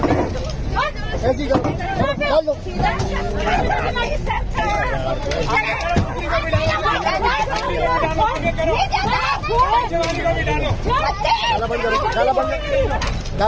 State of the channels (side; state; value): both; identical; correlation 1.00